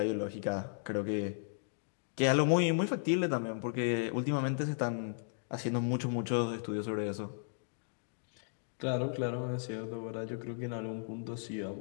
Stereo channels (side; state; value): right; silent; digital silence